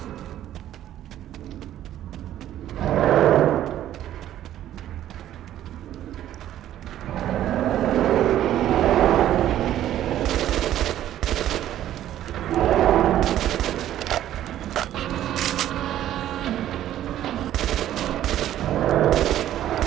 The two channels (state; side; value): quieter; left; 12.2 dB